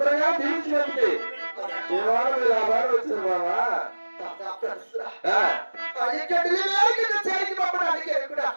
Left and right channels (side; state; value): both; inverted; correlation -1.00